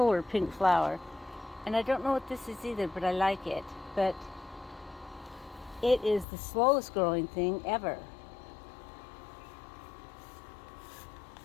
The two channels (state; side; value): drops out; right; at 6.2 s